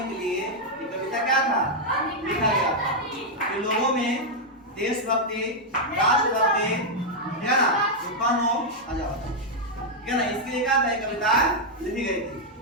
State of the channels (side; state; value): both; normal; correlation -0.02